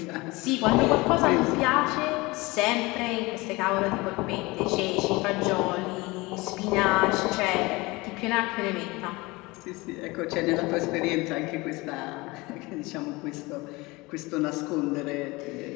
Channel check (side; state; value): right; quieter; 23.1 dB